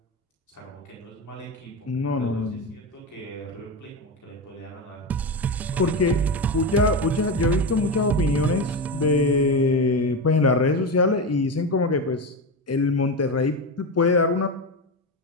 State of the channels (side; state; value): both; normal; correlation 0.17